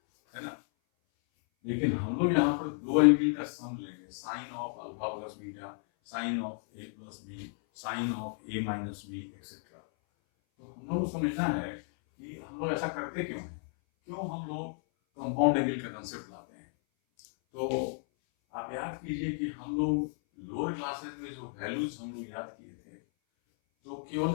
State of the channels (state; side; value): silent; right; 56 dB below the other